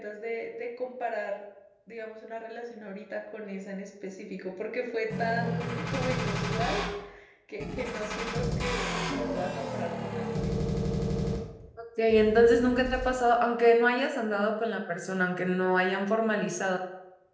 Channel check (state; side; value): identical; both; correlation 1.00